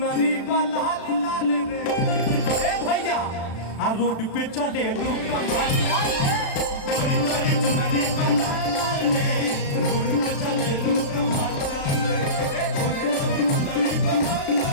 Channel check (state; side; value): late; right; 36 ms